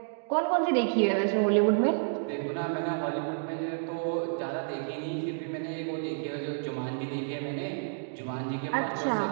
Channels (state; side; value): silent; left; digital silence